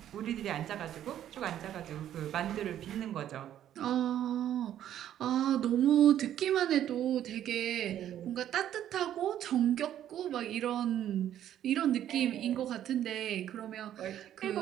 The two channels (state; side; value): quieter; left; 11.1 dB